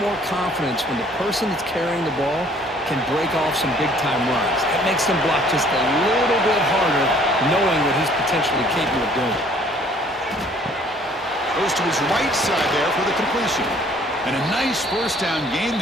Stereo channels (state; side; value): normal; both; correlation 0.57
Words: confidence when the person that's carrying the ball can break off some big-time runs. That makes them block just a little bit harder, knowing what he's potentially capable of doing. Goes to his right side there for the completion. And a nice first down gain